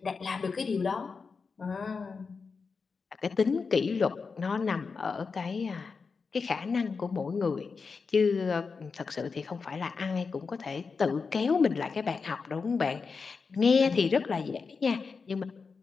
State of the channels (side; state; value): right; quieter; 5.0 dB